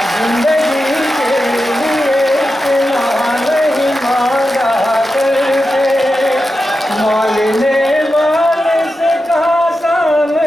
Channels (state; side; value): normal; both; correlation 0.90